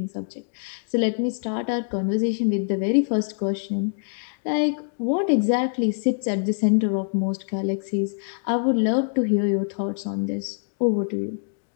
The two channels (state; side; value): silent; right; digital silence